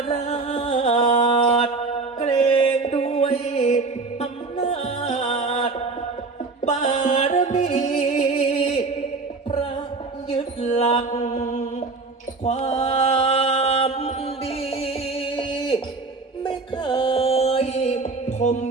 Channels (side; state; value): left; quieter; 3.9 dB